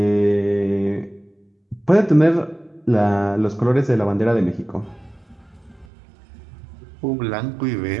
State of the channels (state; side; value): drops out; left; at 5.9 s